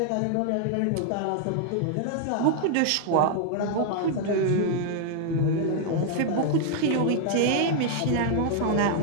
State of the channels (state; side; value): different; both; correlation 0.00